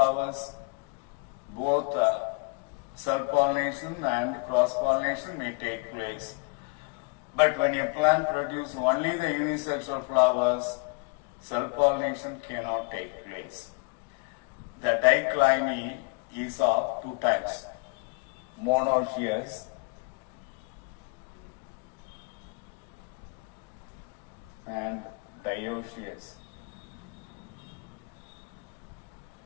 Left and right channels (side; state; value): right; quieter; 31.0 dB